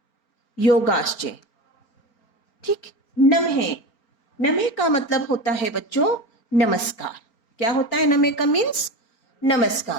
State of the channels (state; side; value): late; right; 4.4 ms